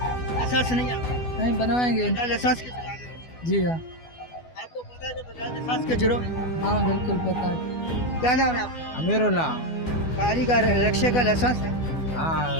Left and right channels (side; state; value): right; late; 12 ms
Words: नहीं है? नहीं बनवाएंगे। लाइसेंस के चला रहे हैं? जी हाँ। आपको पता है कि बगैर लाइसेंस के जुर्म है? हाँ बिल्कुल पता है। क्या नाम है आपका? अमीरुल्लाह। गाड़ी का रिक्शे का लाइसेंस है? हाँ